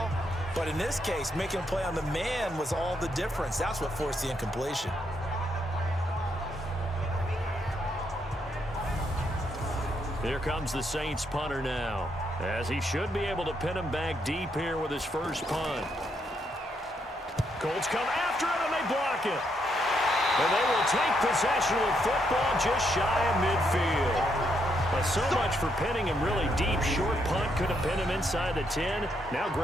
But in this case, making a play on the man was all the difference. That's what forced the incompletion. Here comes the Saints punter now, as he should be able to pin him back deep here with his first punt. Colts come after it, and they block it. And they will take possession with football just shy of midfield. But so much for pinning him really deep. Short punt could have pinned him inside the 10. Now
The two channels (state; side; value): normal; both; correlation 0.77